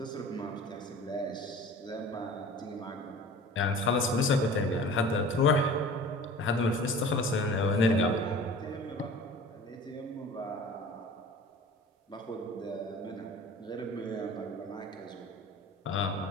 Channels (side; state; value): both; normal; correlation 0.42